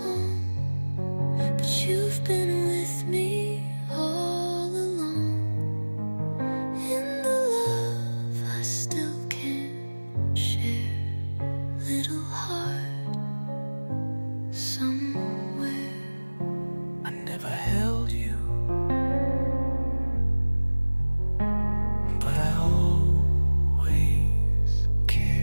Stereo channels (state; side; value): inverted; both; correlation -1.00